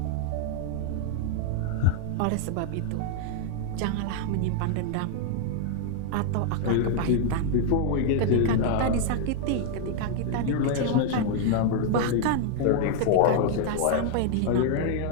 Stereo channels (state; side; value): different; both; correlation 0.00